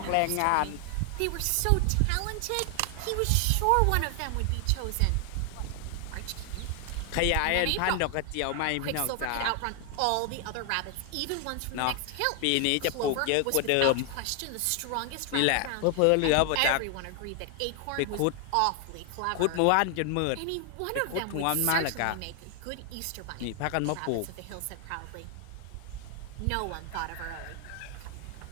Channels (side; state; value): both; different; correlation 0.00